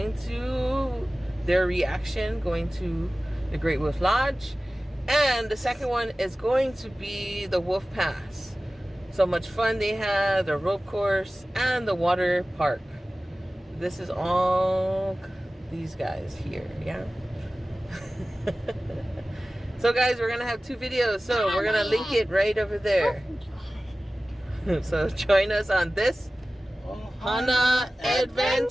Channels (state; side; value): normal; both; correlation 0.96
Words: to their reaction going to the Great Wolf Lodge. And the second one is going to be the Wolf Pass. So much fun they had, the rope course, and the water park. This is all these guys here, yeah? So guys, we're gonna have 2 videos, so we're gonna link it right over there. So join us on this Ohana